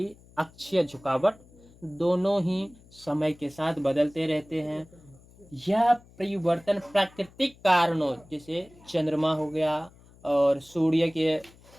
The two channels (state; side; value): noise; left; hum, 25 dB below the sound